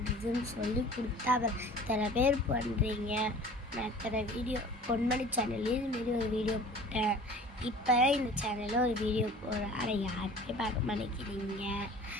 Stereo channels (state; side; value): normal; both; correlation 0.44